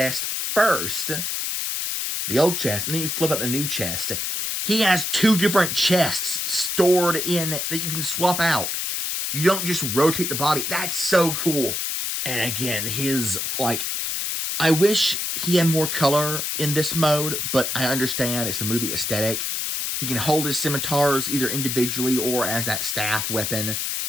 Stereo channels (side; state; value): left; noise; hiss, 1 dB below the sound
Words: first, the old chest, and then you flip out the new chest. He has 2 different chests stored in that you can swap out. You don't just rotate the body. That's so cool. And again, I wish he had more color in this mode, but I understand it's the movie aesthetic. He can hold his scimitars either individually or as that staff weapon.